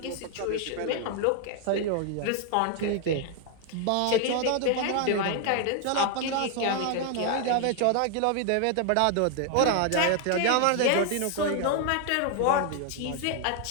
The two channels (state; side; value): different; both; correlation 0.00